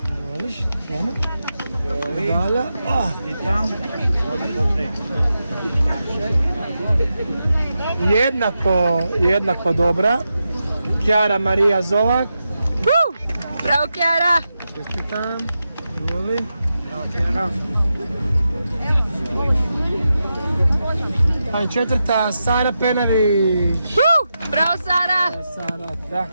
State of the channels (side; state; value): both; inverted; correlation -0.88